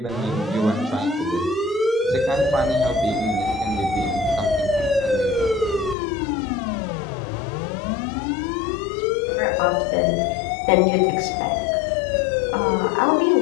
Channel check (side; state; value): right; drops out; at 6.0 s